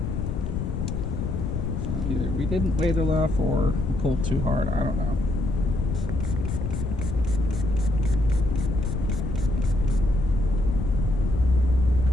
So either we didn't wait enough or we pulled too hard, I don't know.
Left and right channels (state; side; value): noise; left; rumble, 2 dB below the sound